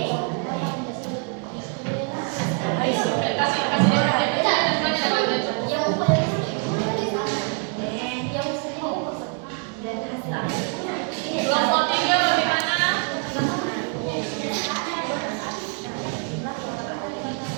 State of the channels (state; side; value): quieter; left; 39.9 dB